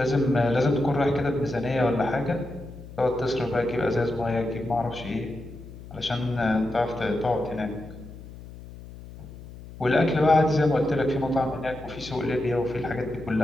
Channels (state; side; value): noise; left; hum, 15 dB below the sound